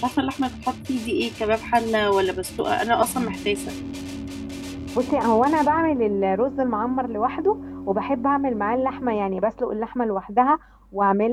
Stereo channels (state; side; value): identical; both; correlation 1.00